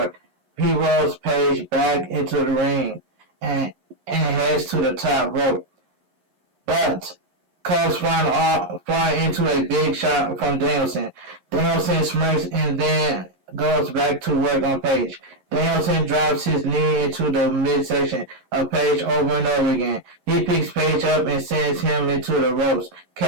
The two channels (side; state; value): left; late; 11 ms